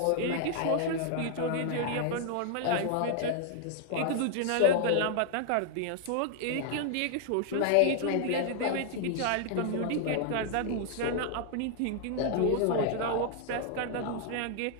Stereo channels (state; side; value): different; both; correlation 0.00